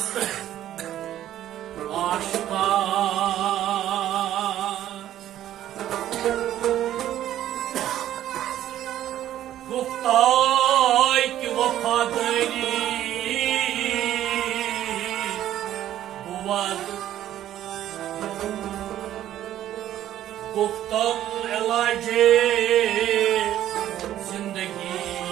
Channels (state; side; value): quieter; left; 12.2 dB